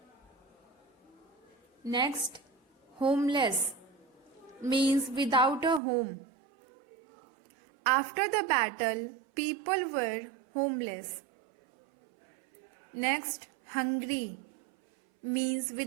Next, homeless means without a home. After the battle, people were homeless. Next, hungry means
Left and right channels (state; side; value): drops out; left; at 5.8 s